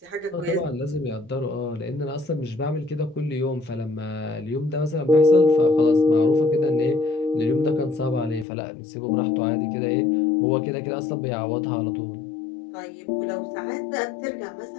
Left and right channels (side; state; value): right; drops out; at 8.5 s